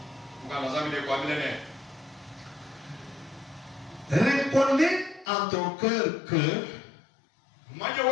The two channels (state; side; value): drops out; right; at 5.2 s